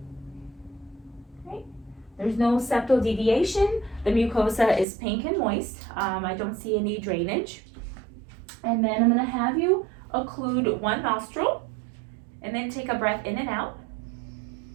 Okay. There's no septal deviation. The mucosa is pink and moist. I don't see any drainage. And then I'm going to have you occlude one nostril and then take a breath in and out.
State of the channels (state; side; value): drops out; left; at 4.9 s